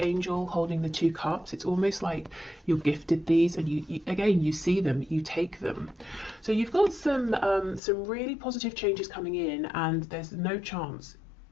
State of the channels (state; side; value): drops out; right; at 7.8 s